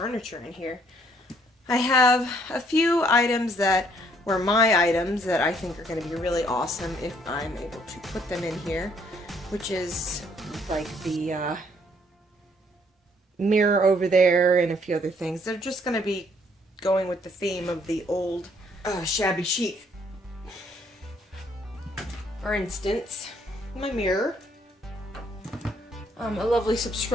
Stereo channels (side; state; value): both; normal; correlation 0.66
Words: in here. I have a few items that were my items that I think are going to be really awesome if I'm able to put them in here, which is like the mirror over there and a few other things. They're just going to be going with the theme of the old shabby chic. For instance, my mirror. A lovely